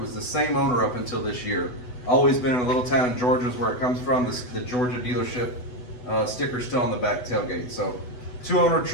the same owner up until this year. Always been in a little town in Georgia is where it comes from. The Georgia dealership sticker's still on the back tailgate. So 200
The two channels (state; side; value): late; right; 8.1 ms